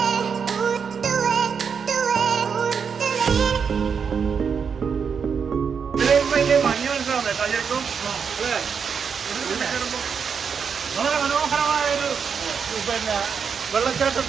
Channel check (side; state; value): left; quieter; 6.4 dB